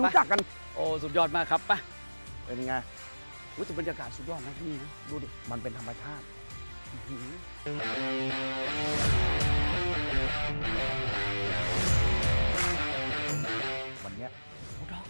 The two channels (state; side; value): inverted; both; correlation -1.00